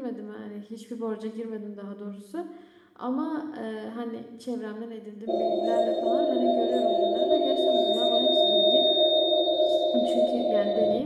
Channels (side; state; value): both; identical; correlation 1.00